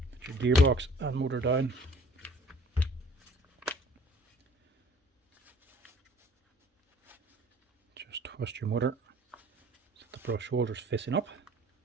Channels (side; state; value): both; normal; correlation 0.52